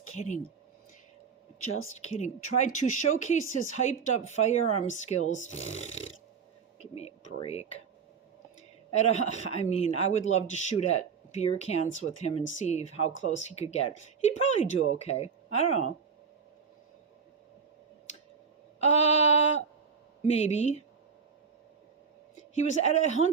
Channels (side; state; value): left; quieter; 6.0 dB